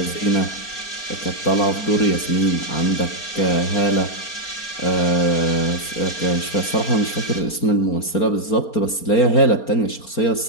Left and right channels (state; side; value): late; right; 4.3 ms